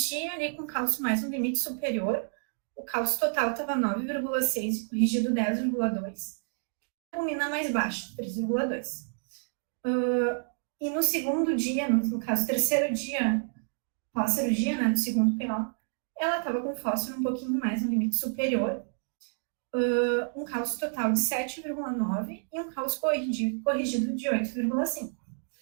ali com cálcio mais no limite superior, o cálcio total estava 9,6, corrigido 10,2, a albumina mais baixa, 3,2. E no segundo dia, no caso, terceiro dia pós-cirurgia, né, no segundo PO, ela estava com fósforo um pouquinho mais no limite superior, um cálcio total de 7,9 e um cálcio corrigido de 8,5.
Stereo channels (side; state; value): left; silent; digital silence